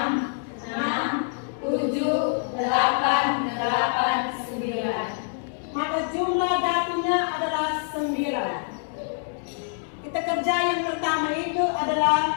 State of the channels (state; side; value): silent; right; digital silence